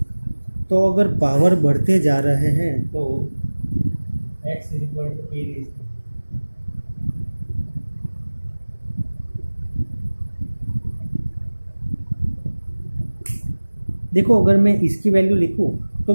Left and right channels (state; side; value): inverted; both; correlation -1.00